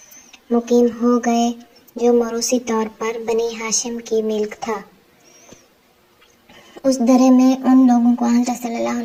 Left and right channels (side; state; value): both; identical; correlation 1.00